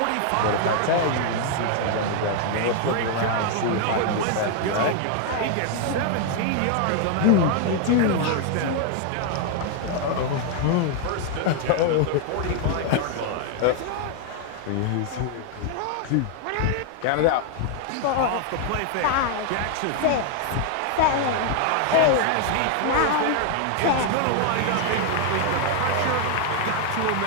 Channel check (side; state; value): both; different; correlation 0.00